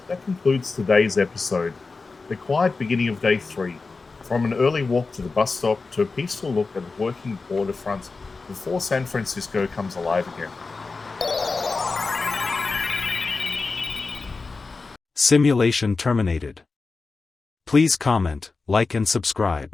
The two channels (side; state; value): right; quieter; 4.1 dB